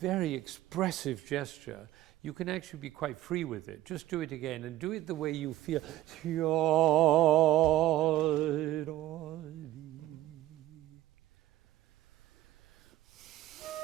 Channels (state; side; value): quieter; left; 15.2 dB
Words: expressive gesture, you can actually be quite free with it. Just do it again and do it the way you feel.